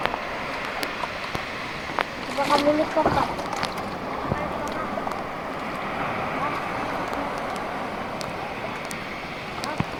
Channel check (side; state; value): both; identical; correlation 1.00